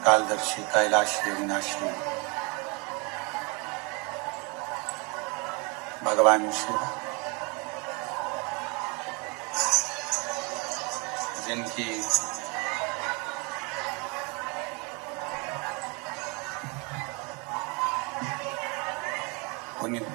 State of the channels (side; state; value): left; quieter; 30.8 dB